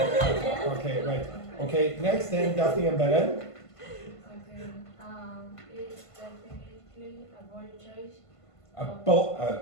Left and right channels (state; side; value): late; right; 1.5 ms